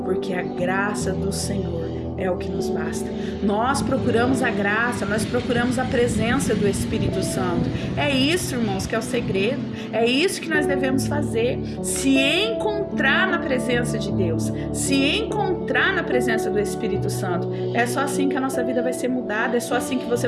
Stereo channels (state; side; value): identical; both; correlation 1.00